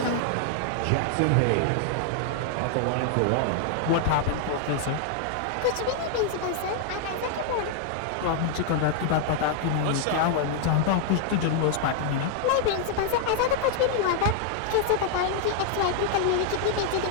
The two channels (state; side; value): different; both; correlation 0.00